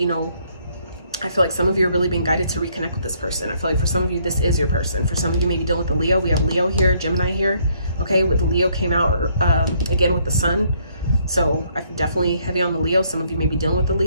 know, I feel like some of you are really being guided to reconnect with this person. I feel like for some of you, this is your person. For some of you, maybe dealing with the Leo. We have Leo here, Gemini here. Okay, with the Leo came out again with the Sun. So I'm definitely heavy on the Leo. Some of you may be dealing with the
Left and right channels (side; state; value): both; inverted; correlation -0.67